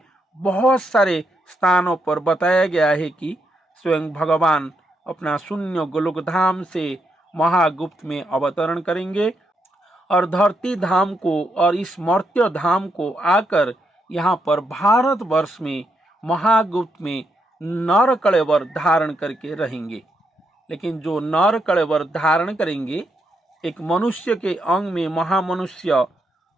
बहुत सारे स्थानों पर बताया गया है कि स्वयं भगवान अपना शून्य गोलोक धाम से महागुप्त में अवतरण करेंगे और धरती धाम को और इस मर्त्य धाम को आकर यहाँ पर भारत वर्ष में महागुप्त में नर कलेवर धारण करके रहेंगे। लेकिन जो नर कलेवर धारण करेंगे, एक मनुष्य के अंग में महामनुष्य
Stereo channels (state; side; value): normal; both; correlation 0.80